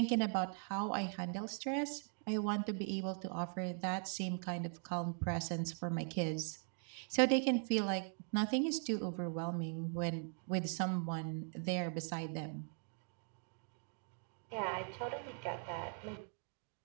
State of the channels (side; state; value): left; silent; 51 dB below the other